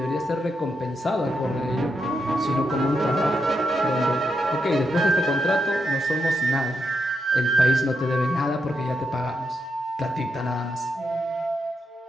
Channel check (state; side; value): normal; both; correlation 0.83